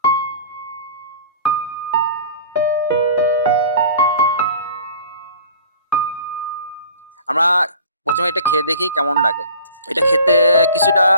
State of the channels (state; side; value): inverted; both; correlation -0.44